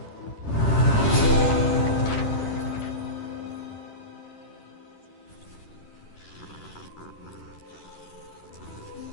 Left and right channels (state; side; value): late; right; 10 ms